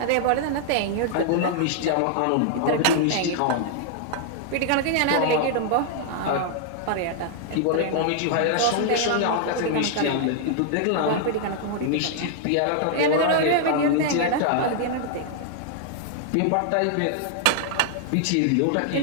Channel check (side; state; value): both; different; correlation 0.00